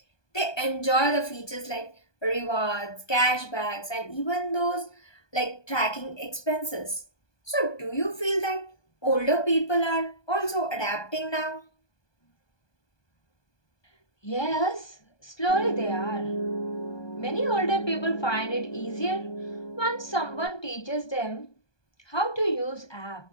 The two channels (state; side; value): late; right; 1.2 ms